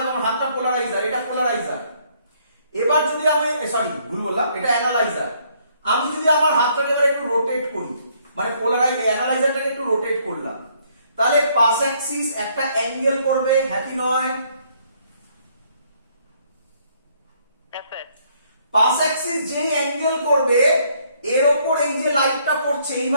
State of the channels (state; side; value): inverted; both; correlation -0.67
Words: আমার হাতটা পোলারাইজার, এটা পোলারাইজার। এবার যদি আমি ভুল বললাম, এটা অ্যানালাইজার। আমি যদি আমার হাতটাকে এবার একটু রোটেট করি, মানে অ্যানালাইজারটাকে একটু রোটেট করলাম, তাহলে পাস অ্যাক্সিস একটা অ্যাঙ্গেল করবে, হ্যাঁ কি নয়? পাস অ্যাক্সিস যেই অ্যাঙ্গেল করবে এর উপর এই যে লাইটটা পড়ছে